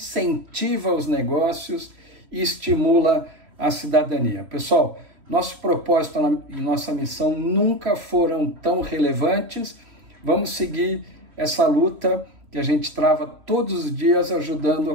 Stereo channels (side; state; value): left; late; 3.1 ms